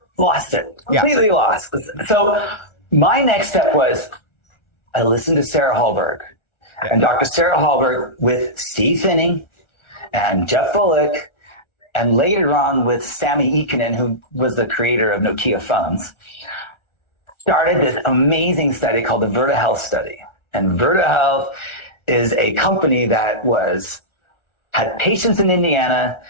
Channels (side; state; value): right; late; 1.4 ms